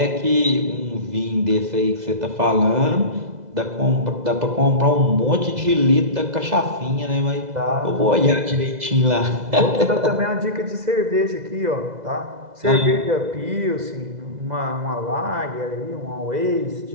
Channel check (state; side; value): late; left; 2.0 ms